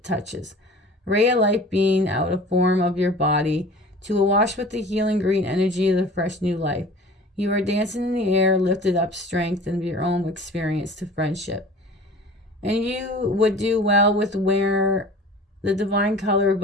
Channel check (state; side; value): normal; both; correlation 0.43